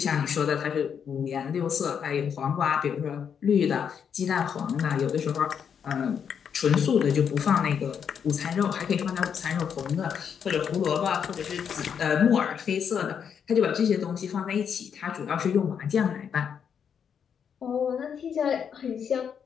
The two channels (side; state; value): right; quieter; 7.5 dB